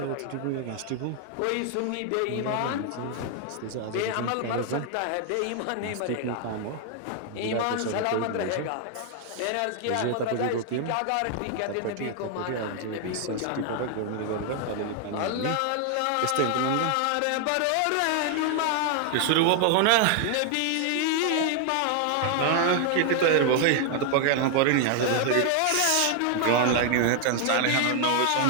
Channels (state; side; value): different; both; correlation 0.00